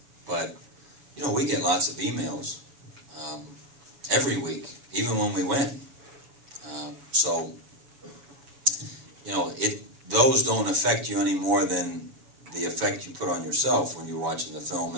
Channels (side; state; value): left; late; 7.2 ms